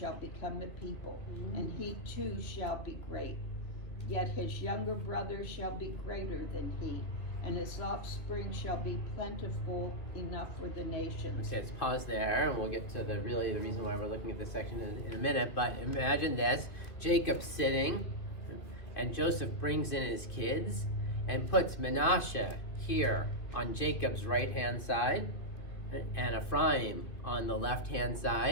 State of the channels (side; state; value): right; late; 2.5 ms